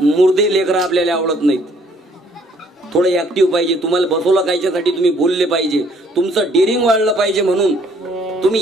मुर्दे लेकरं आपल्याला आवडत नाहीत. थोडं ऍक्टिव्ह पाहिजे. तुम्हाला बसवलं कायच्यासाठी तुम्ही बोलले पाहिजे. तुमचं डेअरिंग वाढलं पाहिजे. म्हणून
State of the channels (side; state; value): both; normal; correlation 0.63